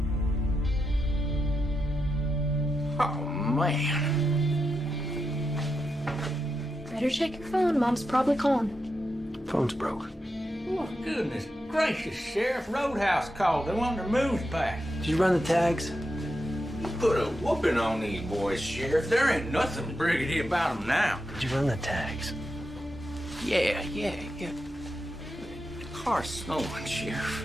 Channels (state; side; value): normal; both; correlation 0.86